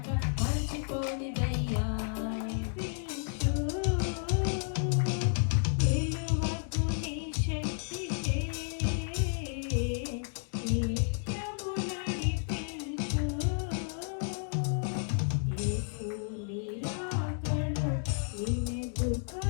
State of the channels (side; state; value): right; silent; 56 dB below the other